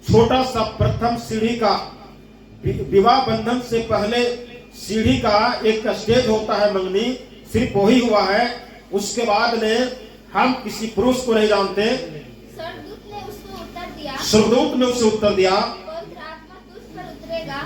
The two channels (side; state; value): both; identical; correlation 1.00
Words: छोटा सा प्रथम सीढ़ी का, विवाह बंधन से पहले सीढ़ी का एक स्टेज होता है मंगनी, सिर्फ वही हुआ है। उसके बाद में हम किसी पुरुष को नहीं जानते। स्वर्गदूत ने उसको उत्तर दिया, स्वर्गदूत ने उसे उत्तर दिया,